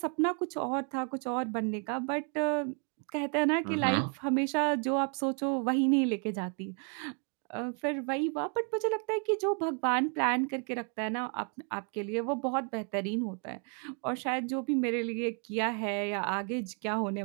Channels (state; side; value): quieter; left; 39.7 dB